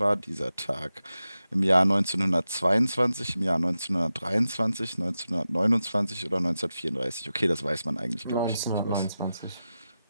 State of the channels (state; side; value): inverted; both; correlation -0.92